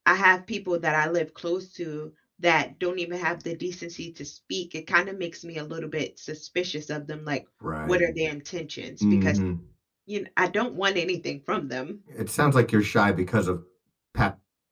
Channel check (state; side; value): identical; both; correlation 1.00